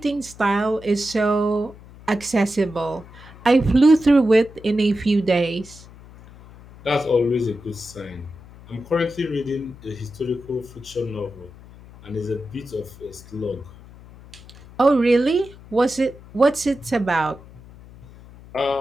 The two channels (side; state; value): left; noise; hum, 20 dB below the sound